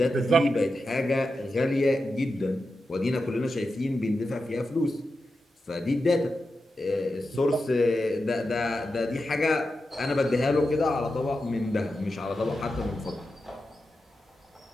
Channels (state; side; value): normal; both; correlation 0.90